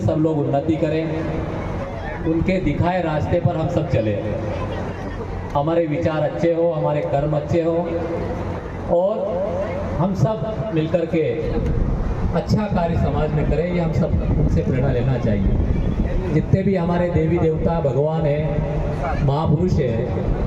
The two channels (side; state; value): both; identical; correlation 1.00